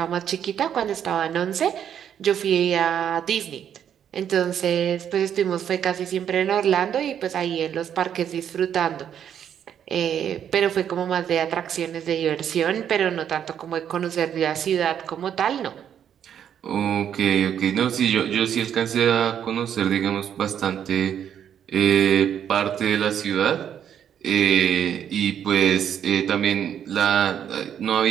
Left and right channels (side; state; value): left; quieter; 9.1 dB